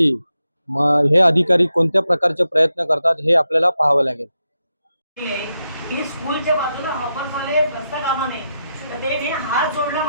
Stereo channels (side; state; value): both; inverted; correlation -0.86